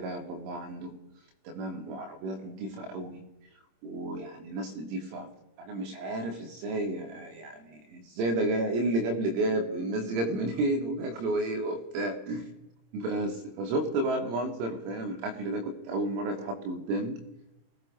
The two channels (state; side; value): late; left; 26 ms